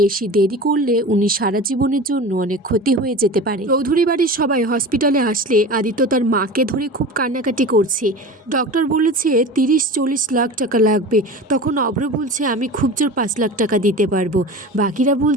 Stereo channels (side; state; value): both; normal; correlation 0.33